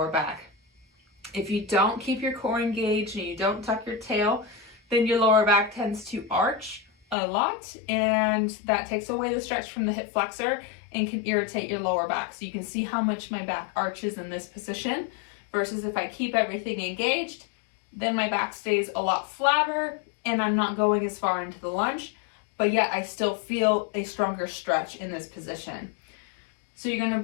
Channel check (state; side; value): drops out; right; at 7.2 s